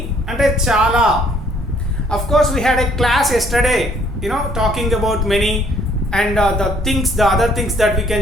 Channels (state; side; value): normal; both; correlation 0.63